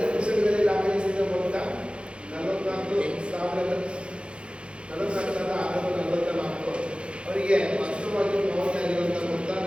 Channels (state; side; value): late; left; 0.057 ms